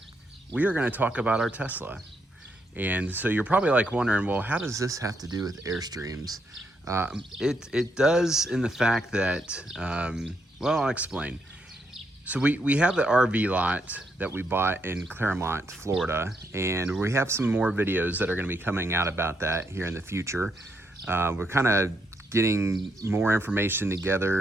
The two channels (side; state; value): both; normal; correlation 0.77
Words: we are going to talk about our Tesla. And so you're probably like wondering, well, how does this have to do with Airstreams? It does in the fact that, well, I'll explain. So we have the RV lot that we bought in Claremont, Florida, and we have some more videos that are going to be coming out about that here in the future. We're kind of getting more information